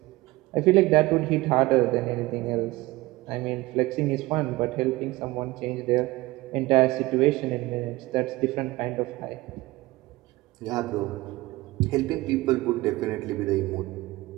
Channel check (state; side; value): quieter; left; 20.0 dB